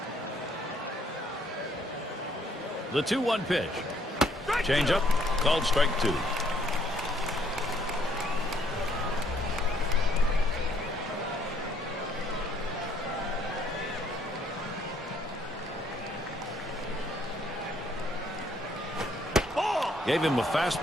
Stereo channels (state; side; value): normal; both; correlation 0.66